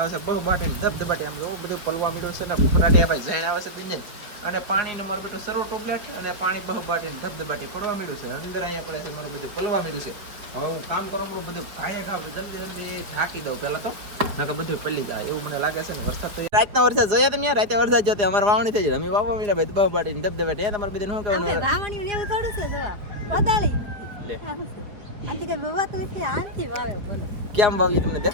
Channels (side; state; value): left; late; 5.0 ms